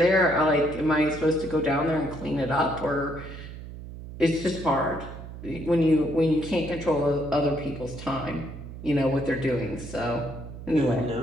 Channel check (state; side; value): noise; right; hum, 12 dB below the sound